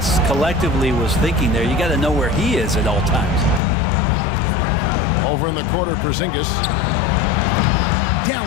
collectively was thinking there. You got to know where he is at all times. Over in the corner, Porzingis.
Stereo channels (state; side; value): drops out; right; at 3.6 s